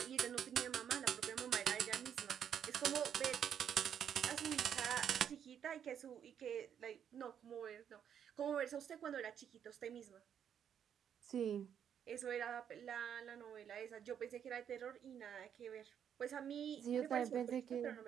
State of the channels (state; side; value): quieter; left; 8.7 dB